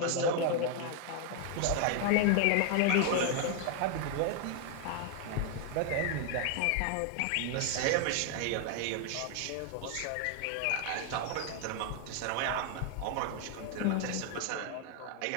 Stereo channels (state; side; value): different; both; correlation 0.00